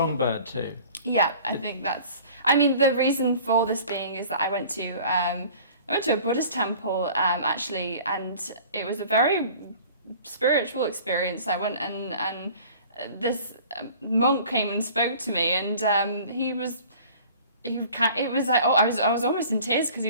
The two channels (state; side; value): inverted; both; correlation -0.47